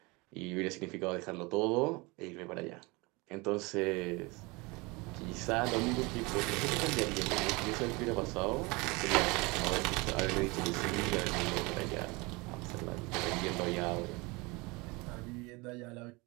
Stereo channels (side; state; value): left; quieter; 25.7 dB